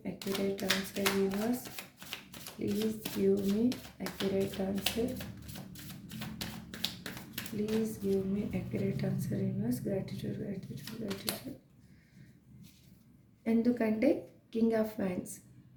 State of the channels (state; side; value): identical; both; correlation 1.00